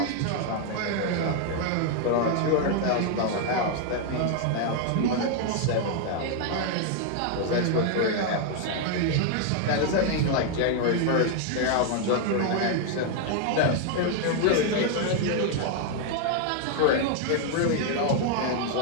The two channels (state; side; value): different; both; correlation 0.00